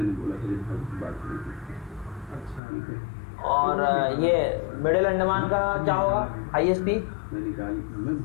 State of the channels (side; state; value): right; drops out; at 2.6 s